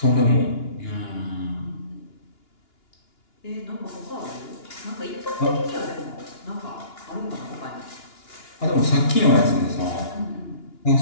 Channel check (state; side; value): late; right; 2.9 ms